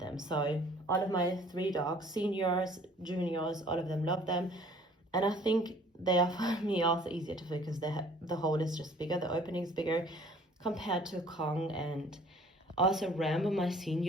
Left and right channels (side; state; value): both; normal; correlation 0.54